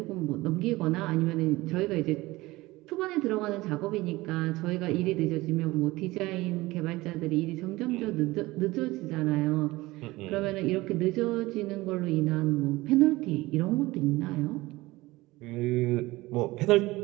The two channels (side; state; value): left; quieter; 19.8 dB